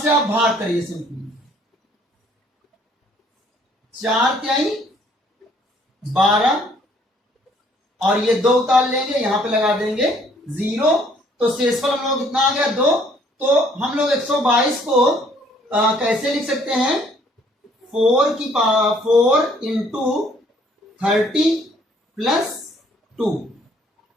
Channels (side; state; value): both; normal; correlation 0.62